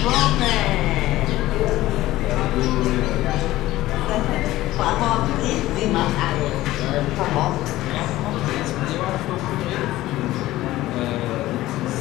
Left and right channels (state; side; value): quieter; right; 16.3 dB